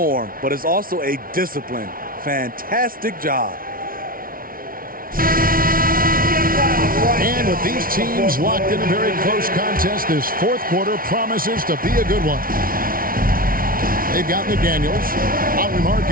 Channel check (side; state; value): left; late; 0.42 ms